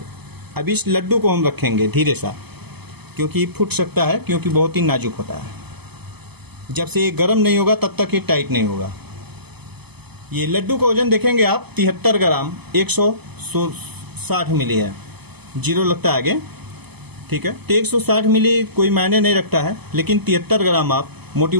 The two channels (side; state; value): left; late; 0.98 ms